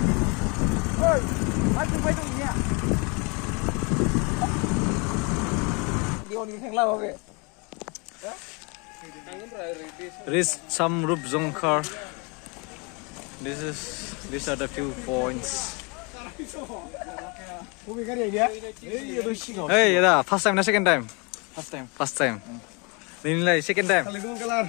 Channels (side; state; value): right; quieter; 31.0 dB